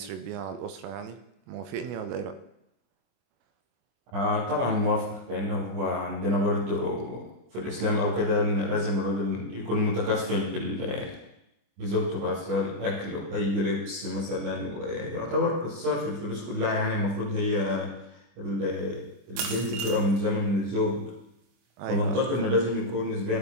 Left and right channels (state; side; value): late; left; 25 ms